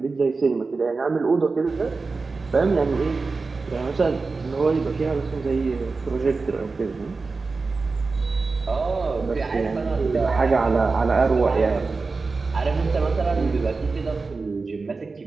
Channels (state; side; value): quieter; left; 4.1 dB